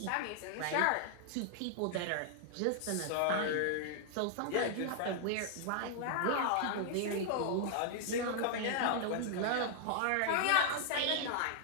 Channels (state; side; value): different; both; correlation -0.01